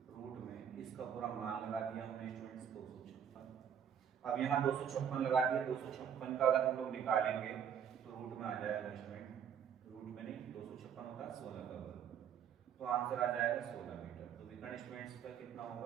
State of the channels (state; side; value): quieter; left; 8.4 dB